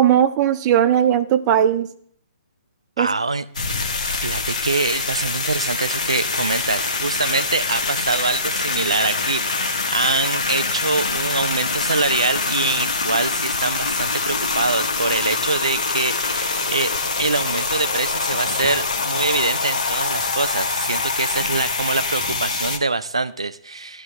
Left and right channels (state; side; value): inverted; both; correlation -0.42